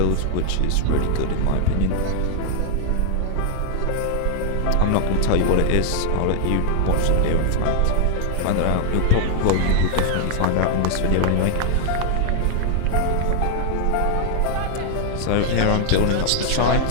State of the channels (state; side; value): different; both; correlation 0.00